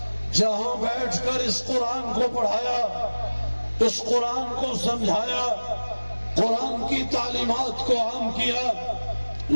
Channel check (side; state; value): both; inverted; correlation -1.00